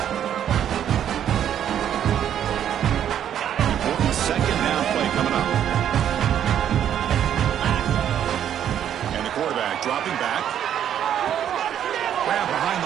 Dropping back. Grab behind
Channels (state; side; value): quieter; left; 9.9 dB